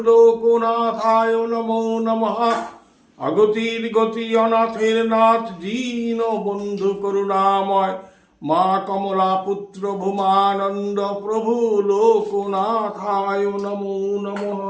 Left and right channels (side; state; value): both; identical; correlation 1.00